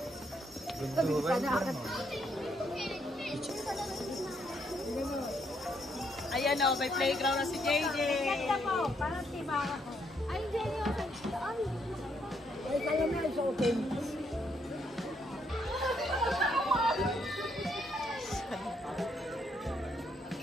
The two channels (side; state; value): both; normal; correlation 0.74